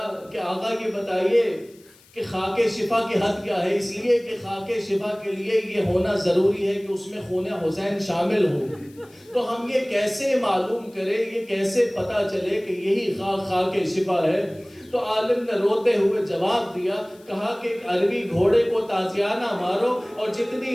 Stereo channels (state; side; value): noise; left; hiss, 28 dB below the sound